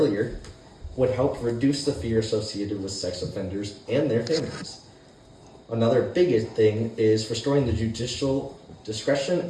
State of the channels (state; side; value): identical; both; correlation 1.00